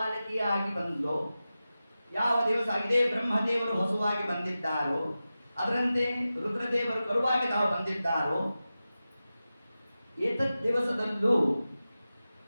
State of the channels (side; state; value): both; inverted; correlation -0.94